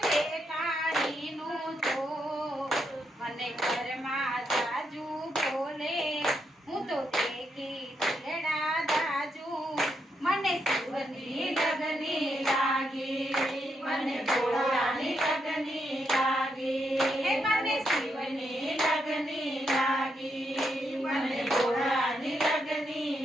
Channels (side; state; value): both; normal; correlation 0.80